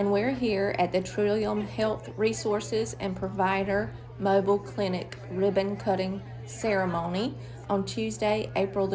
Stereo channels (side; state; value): both; identical; correlation 1.00